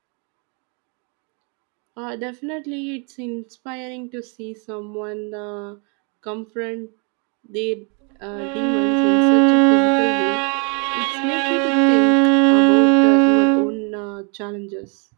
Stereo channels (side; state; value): left; quieter; 36.6 dB